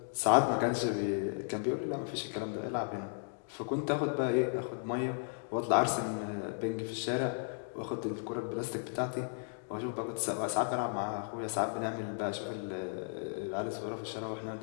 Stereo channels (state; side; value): silent; right; digital silence